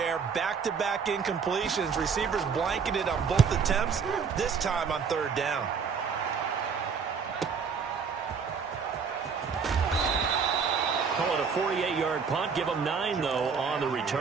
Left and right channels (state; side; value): quieter; left; 5.9 dB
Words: Back-to-back incompletions. Receivers blanketed on both attempts, this time on third down. Call it a 48-yard punt. Give them 9, though, on the